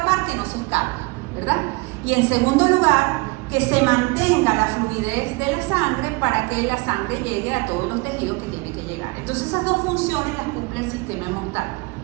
que no se escape, ¿verdad? Y en segundo lugar, que se mantenga la fluidez de la sangre para que la sangre llegue a todos los tejidos que tiene que llegar. Entonces esas dos funciones las cumple el sistema inmunitario,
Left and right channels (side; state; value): left; quieter; 26.4 dB